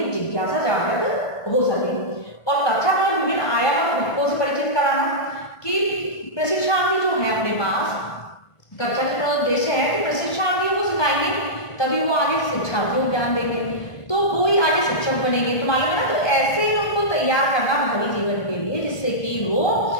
जिज्ञासा जागृत हो सके। और कक्षा का विभिन्न आयाम और घटकों से परिचित कराना कि प्रशिक्षणार्थी जो है अपने पास कक्षा का उद्देश्य है कि प्रशिक्षणार्थी को सिखाएंगे तभी वो आगे शिक्षार्थियों को ज्ञान देंगे तो वो ही आगे शिक्षक बनेंगे। तो मालूम है ना, तो ऐसे ही उनको तैयार करना भावी जीवन के लिए जिससे कि वो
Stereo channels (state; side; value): late; right; 1.5 ms